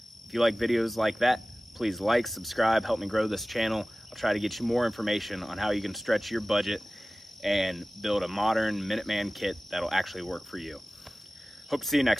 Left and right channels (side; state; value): both; normal; correlation 0.97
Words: If you like videos like that, please like, subscribe, help me grow this channel. I'll try to get you more information on how you can stretch your budget and build a modern Minuteman kit that'll actually work for you. Hope to see you